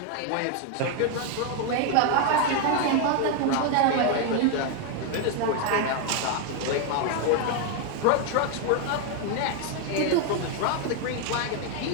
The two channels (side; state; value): both; different; correlation 0.01